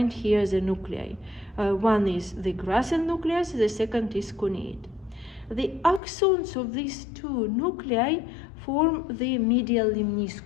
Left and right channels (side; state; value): right; drops out; at 6.0 s